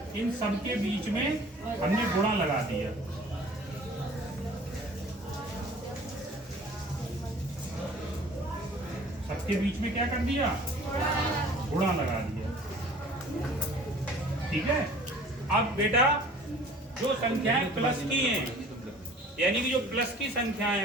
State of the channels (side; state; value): both; normal; correlation 0.48